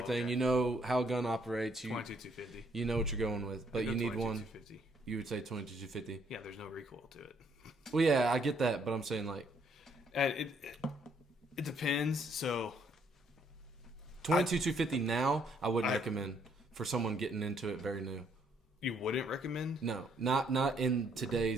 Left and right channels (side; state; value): both; normal; correlation 0.69